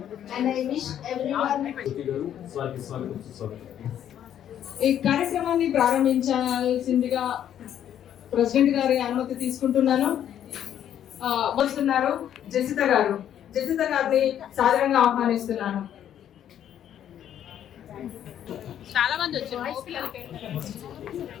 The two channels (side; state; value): right; quieter; 10.3 dB